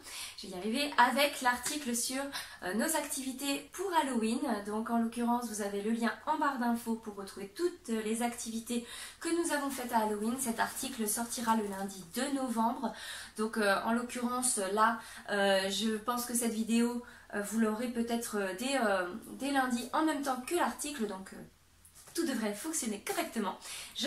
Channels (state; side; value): identical; both; correlation 1.00